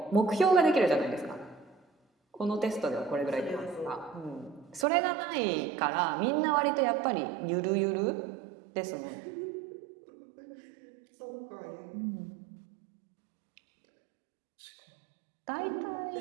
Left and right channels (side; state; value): left; drops out; at 4.9 s